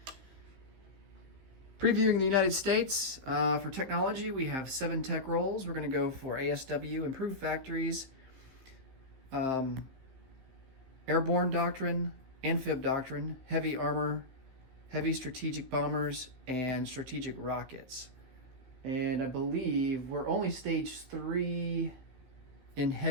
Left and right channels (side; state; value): left; late; 15 ms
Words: Previewing the United States, for technology we have 7 tech roles. We're going to go for ASW, Improved Factories, Airborne Doctrine, Amphib Doctrine, Heavy Armor, Heavy Strategic Bombers, and Strategic Rockets. And I believe we're only stage 3 in